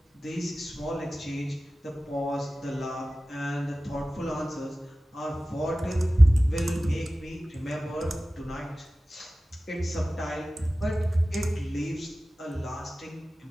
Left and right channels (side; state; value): both; normal; correlation 0.96